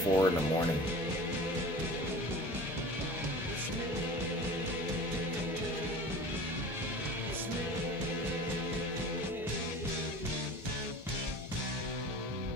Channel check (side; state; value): both; normal; correlation 0.39